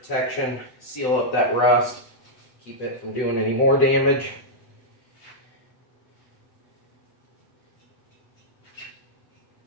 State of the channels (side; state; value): right; late; 7.9 ms